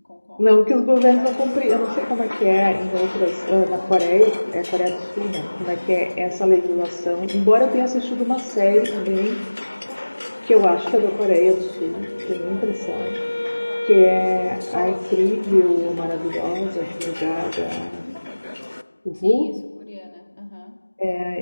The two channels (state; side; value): inverted; both; correlation -1.00